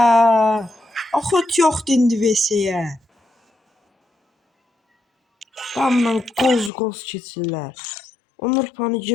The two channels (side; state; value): right; drops out; at 6.7 s